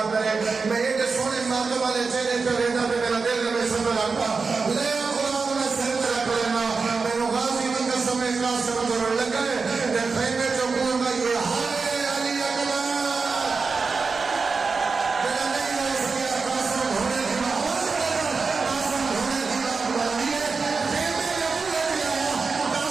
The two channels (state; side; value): quieter; left; 4.6 dB